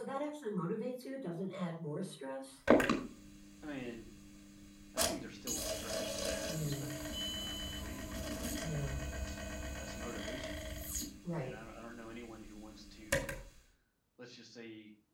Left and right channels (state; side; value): identical; both; correlation 1.00